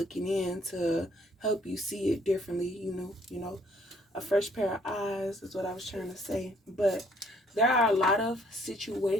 in to help you see it differently. A fresh pair of eyes is what I was trying to say. But there are a lot of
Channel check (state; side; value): normal; both; correlation 0.63